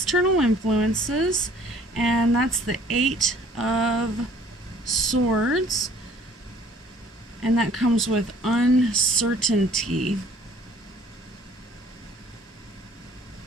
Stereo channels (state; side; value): normal; both; correlation 0.55